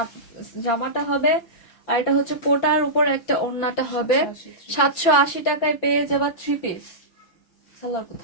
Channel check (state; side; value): late; right; 5.8 ms